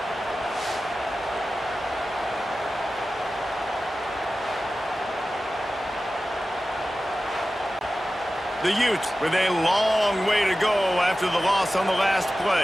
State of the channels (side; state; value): both; normal; correlation 0.95